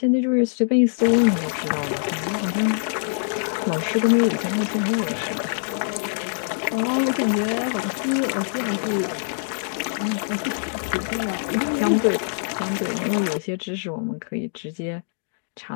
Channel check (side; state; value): right; silent; digital silence